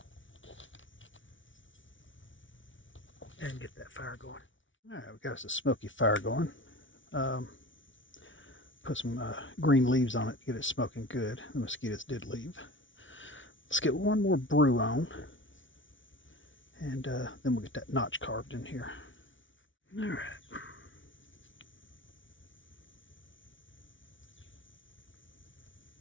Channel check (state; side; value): late; right; 0.56 ms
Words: And get that fire going. Alright, we got us a smoky fire going. Put some green leaves on it to get it smoking good. The mosquitoes did leave. Let's get one more brew on. And then we'll get that notch carved in here. Alright.